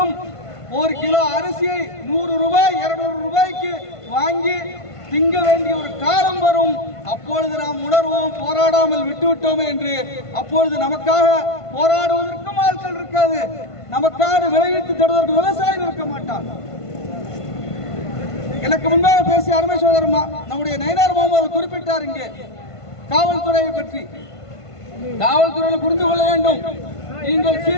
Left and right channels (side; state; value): right; late; 1.5 ms